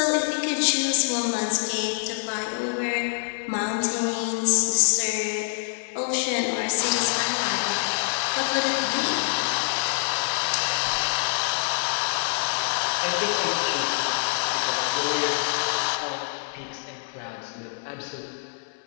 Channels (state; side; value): silent; right; 61 dB below the other